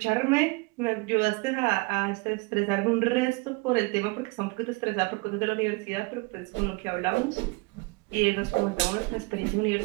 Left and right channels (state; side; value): quieter; left; 27.4 dB